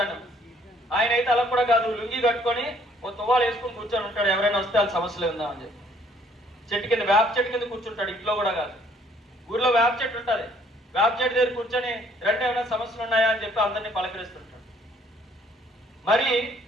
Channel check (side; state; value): both; normal; correlation 0.62